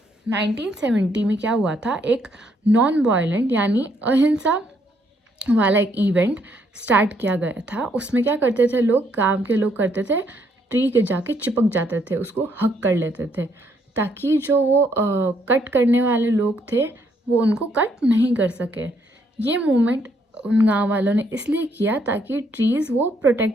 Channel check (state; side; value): normal; both; correlation 0.71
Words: 1970 में क्या हुआ था, एक non violent यानी अहिंसा वाला एक event start किया गया था। उसमें क्या करते थे लोग, गांव के लोग करते थे, ट्री के जाके चिपक जाते थे, उसको हक कर लेते थे, ताकि जो वो कट करने वाले लोग थे वो उनको कट नहीं कर सके। ये मूवमेंट उन गांव वालों ने इसलिए किया ताकि ट्रीज़ वो